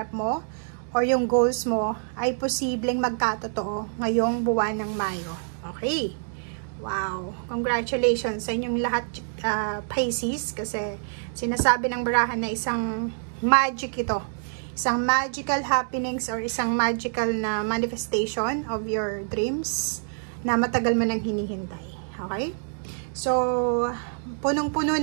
mo or yung goals mo ay posibleng magkatotoo ngayong buwan ng Mayo. Okay. Wow. Congratulations sa inyong lahat Pisces kasi sinasabi ng barahan na isang magic ito. Isang magical happenings or isang magical na manifestation of your dreams na matagal mo nang hinihintay. Okay? So, punong-puno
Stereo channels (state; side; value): silent; left; digital silence